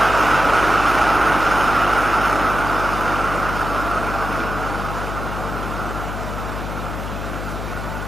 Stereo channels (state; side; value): noise; left; hum, 6 dB below the sound